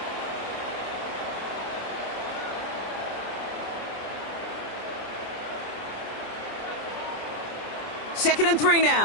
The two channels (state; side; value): late; right; 27 ms